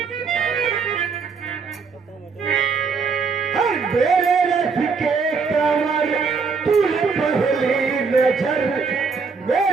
मेरे रथ के कमर तूने पहली नजर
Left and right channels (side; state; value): left; quieter; 5.1 dB